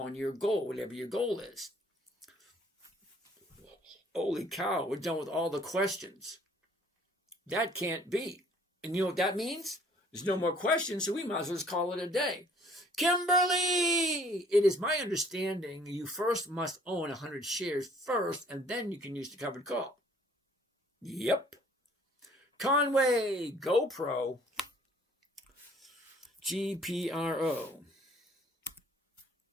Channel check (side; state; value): both; normal; correlation 0.58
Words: your goal, whatever your goal is. Holy cow, we're done with all the questions. That can't be. And you know what that means? There's no more questions, so we might as well just call it a day. Kimberly! It is my understanding you first must own 100 shares first, and then you can use the covered call. Yep. Conway, GoPro, GPRO.